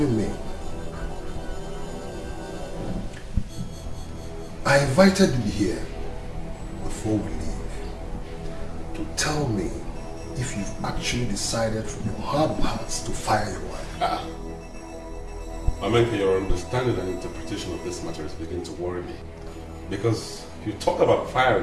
me. I invited you here before we leave to tell me if you've actually decided from your heart of hearts to fire your wife. Amenka, your understanding and interpretation of this matter is beginning to worry me. Because you talk about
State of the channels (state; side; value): identical; both; correlation 1.00